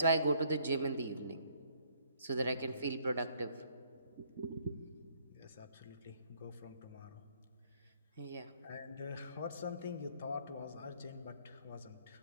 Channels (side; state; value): both; inverted; correlation -0.64